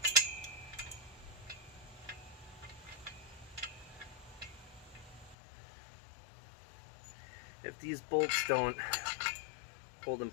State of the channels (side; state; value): right; drops out; at 5.4 s